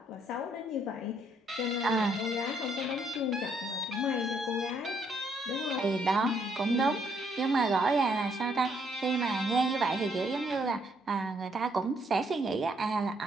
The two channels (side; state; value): both; normal; correlation 0.70